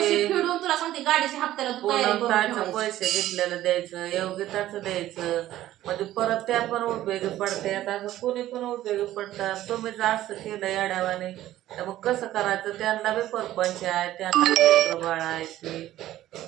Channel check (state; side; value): quieter; left; 14.0 dB